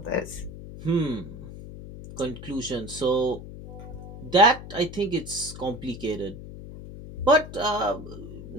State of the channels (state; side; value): noise; left; hum, 12 dB below the sound